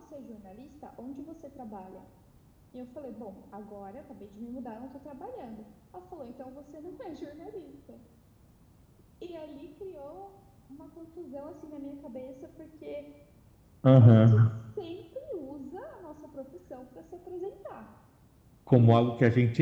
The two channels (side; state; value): both; identical; correlation 1.00